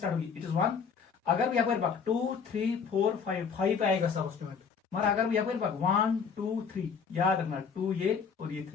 होगी? It is 1। अगर भी यपर 2 3 4 5 पे आएगा सब्स्टिट्यूएंट, मगर अगर भी यपर 1 2 3, याद रखना 2 ये और ये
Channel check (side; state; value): right; quieter; 6.1 dB